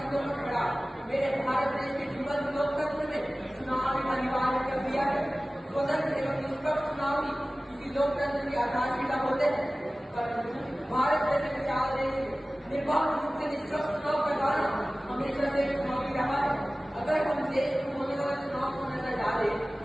पर खड़ा मेरे भारत देश के जीवन लोकतंत्र में चुनाव अनिवार्य कर दिया है। स्वतंत्र एवं निष्पक्ष चुनाव ही किसी लोकतंत्र की आधारशिला होते हैं, परंतु भारत जैसे विशाल देश में निर्बाध रूप से निष्पक्ष चुनाव करवाना हमेशा से चुनौती रहा है। अगर हम देश में होने वाले चुनाव को नजर डालें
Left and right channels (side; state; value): both; normal; correlation 0.97